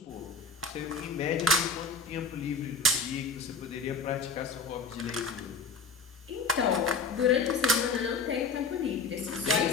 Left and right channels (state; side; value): quieter; right; 4.0 dB